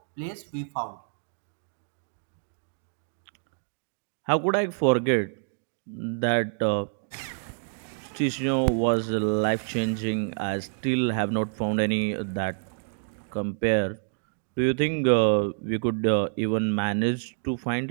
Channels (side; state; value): left; silent; digital silence